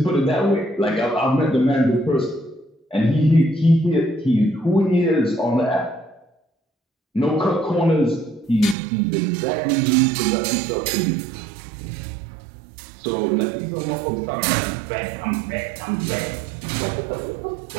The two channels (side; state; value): left; drops out; at 8.8 s